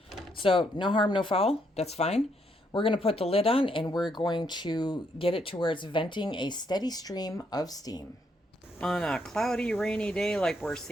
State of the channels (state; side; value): normal; both; correlation 0.74